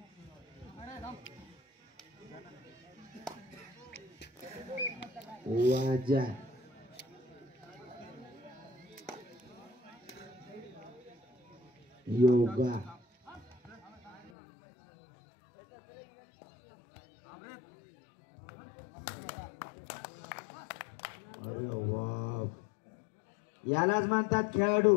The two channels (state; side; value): drops out; right; at 14.3 s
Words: वाजा योगा अरे वा यालाच म्हणतात खेळाडू